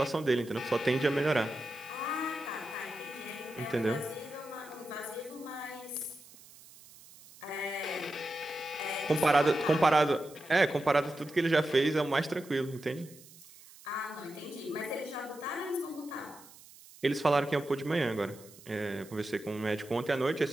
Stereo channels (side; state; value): right; noise; hiss, 21 dB below the sound